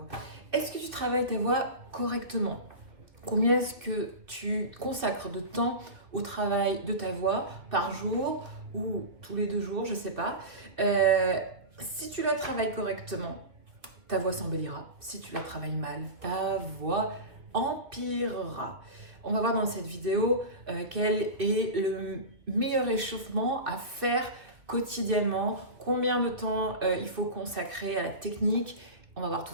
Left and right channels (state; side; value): late; left; 2.3 ms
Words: Est-ce que tu travailles ta voix correctement? Combien est-ce que tu consacres de temps au travail de ta voix par jour ou tous les 2 jours, je ne sais pas. Si tu la travailles correctement, ta voix s'embellira. Si tu la travailles mal, ta voix empirera. On va voir dans cette vidéo quel est le meilleur échauffement à faire quotidiennement, combien de temps il faut consacrer à la technique. On va voir tout